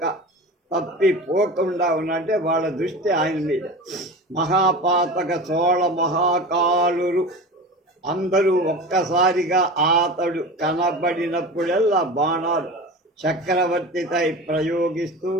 తప్పిపోకుండా ఉన్నట్టే వాళ్ళ దృష్టి ఆయన మీద. మహాపాతక చోళ మహాకాలురు అందరూ ఒక్కసారిగా అతడు కనబడినప్పుడల్లా బాణాలు చక్రవర్తిపై ప్రయోగిస్తూ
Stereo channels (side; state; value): both; normal; correlation 0.32